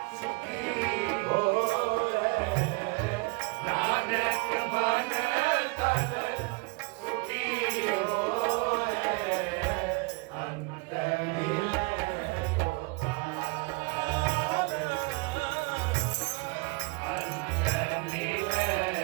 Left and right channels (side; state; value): left; quieter; 28.8 dB